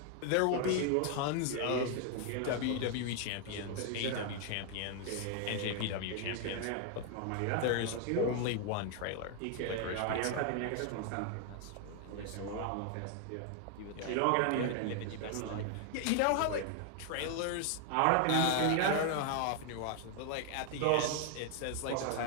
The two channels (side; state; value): both; different; correlation 0.00